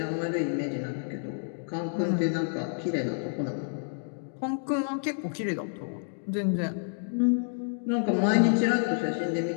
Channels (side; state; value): right; silent; digital silence